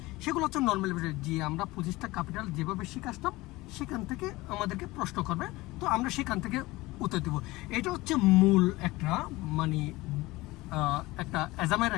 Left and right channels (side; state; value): right; quieter; 20.3 dB